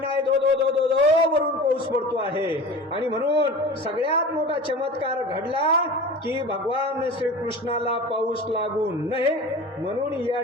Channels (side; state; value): both; normal; correlation 0.35